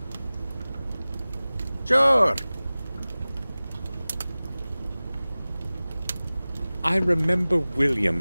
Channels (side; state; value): both; inverted; correlation -0.98